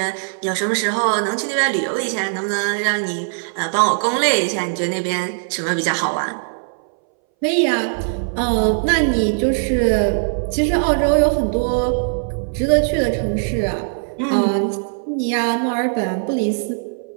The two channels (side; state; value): left; silent; 62 dB below the other